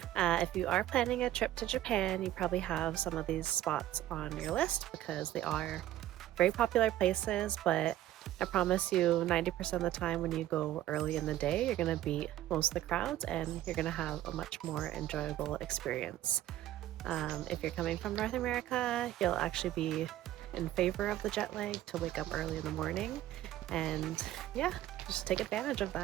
If you are planning a trip to Japan, you probably have some of these spots on your list because they are very popular places, but I promise you 90% of the time when you go early in the day, you're going to beat most of the crowds and you're going to have a much more enjoyable experience. If you're coming from North America, you'll actually be in favor of the jet lag to wake up early in the morning, and yeah, just take advantage of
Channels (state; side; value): quieter; left; 13.7 dB